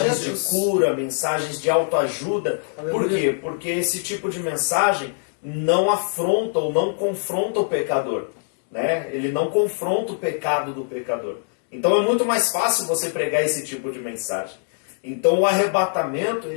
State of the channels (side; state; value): right; silent; 61 dB below the other